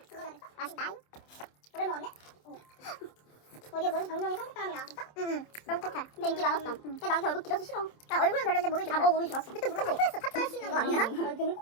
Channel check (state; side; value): late; right; 27 ms